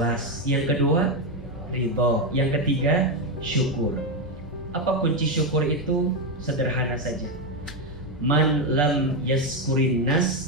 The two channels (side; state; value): both; normal; correlation 0.06